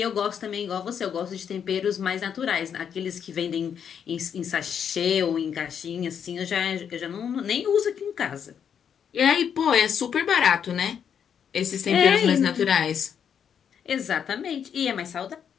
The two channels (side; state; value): right; quieter; 7.9 dB